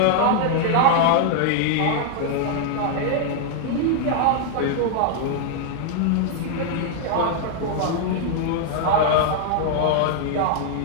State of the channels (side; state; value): both; different; correlation 0.00